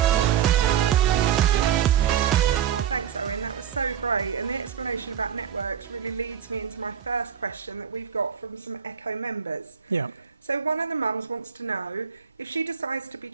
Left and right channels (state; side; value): quieter; left; 8.3 dB